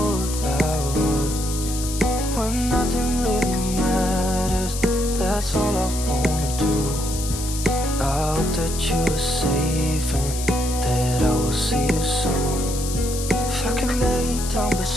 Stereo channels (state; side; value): noise; left; hiss, 8 dB below the sound